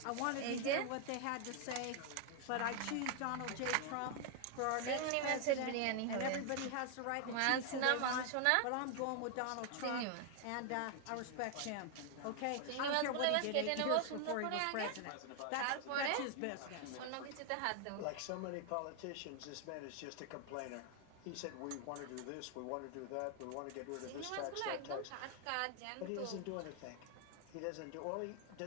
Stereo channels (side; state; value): both; different; correlation 0.00